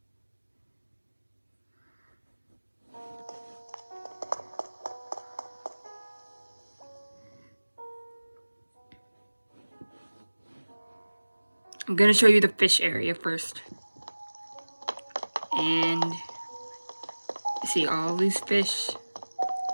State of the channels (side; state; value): both; inverted; correlation -1.00